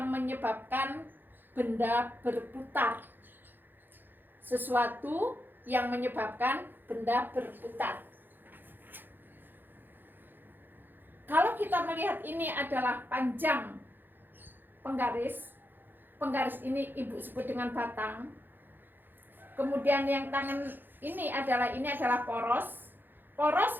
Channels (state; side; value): late; left; 0.093 ms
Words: menyebabkan benda berputar. Sesuatu yang menyebabkan benda berputar. Kalau kita melihat ini adalah panjang penggaris ini Ibu sebut dengan batang. Kemudian yang tangan ini adalah poros.